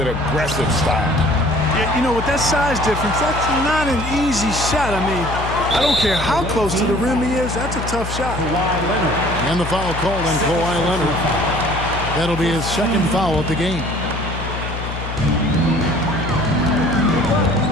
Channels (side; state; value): left; noise; hum, 6 dB below the sound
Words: aggressive style. Yeah, you know, with that size difference, that's not an easy shot. I mean, I don't care how close to the rim he is, that's a tough shot. And the foul called on Kawhi Leonard. That'll be his second foul of the game.